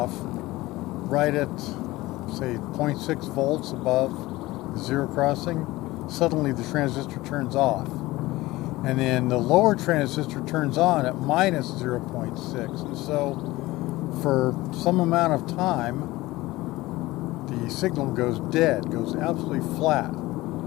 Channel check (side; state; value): right; quieter; 19.0 dB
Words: right at, say, 0.6 volts above zero crossing, suddenly the transistor turns off. And then the lower transistor turns on at minus 0.6. And so for some amount of time, the signal goes dead, goes absolutely flat.